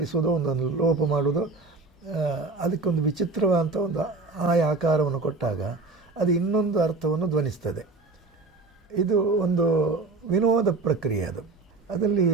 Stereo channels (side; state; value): left; quieter; 3.6 dB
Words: ಒಂದೊಂದು ಲೋಪ ಮಾಡೋದು, ಅದಕ್ಕೊಂದು ವಿಚಿತ್ರವಾದಂಥ ಒಂದು ಆಕಾರವನ್ನು ಕೊಟ್ಟಾಗ ಅದು ಇನ್ನೊಂದು ಅರ್ಥವನ್ನು ಧ್ವನಿಸ್ತದೆ. ಇದು ಒಂದು ವಿನೋದ ಪ್ರಕ್ರಿಯೆ. ಅದರಲ್ಲಿ